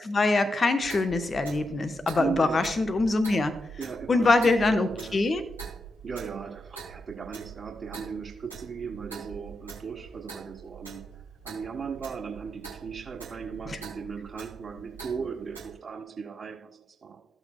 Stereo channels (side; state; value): both; normal; correlation 0.85